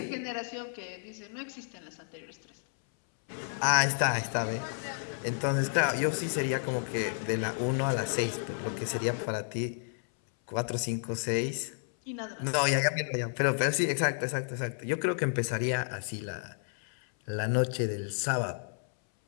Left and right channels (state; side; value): silent; right; 57 dB below the other